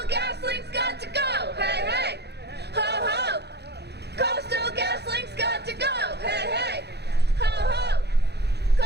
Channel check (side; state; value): left; late; 0.48 ms